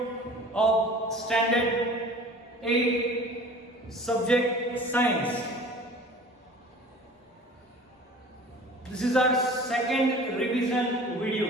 of standard 8 subject science. This is our second revision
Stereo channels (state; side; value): normal; both; correlation 0.44